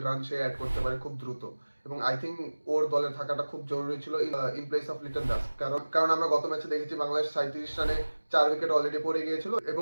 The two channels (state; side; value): inverted; both; correlation -1.00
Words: রান সে অ্যাড করতে পারে খুব দ্রুত এবং আই থিঙ্ক ওর দলে থাকাটা খুব জরুরি ছিল in place of Liton Das. কারণ আমরা গত ম্যাচে দেখেছি বাংলাদেশ 37 রানে 4 উইকেট অলরেডি পড়ে গিয়েছিল এবং